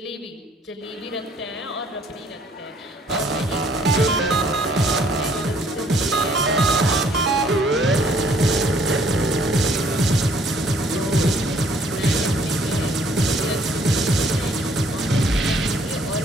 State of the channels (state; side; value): normal; both; correlation 0.62